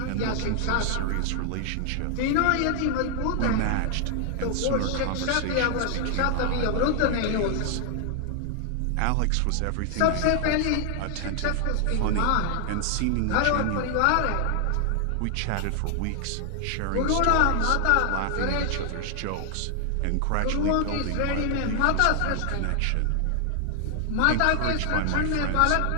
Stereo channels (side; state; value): both; different; correlation 0.00